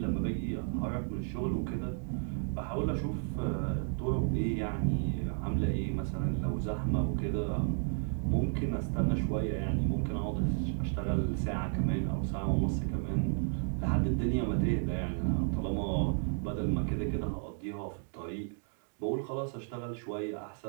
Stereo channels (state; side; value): silent; left; 56 dB below the other